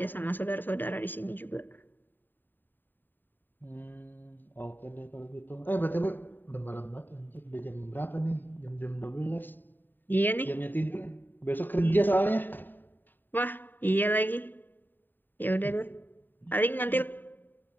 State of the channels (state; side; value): late; right; 0.091 ms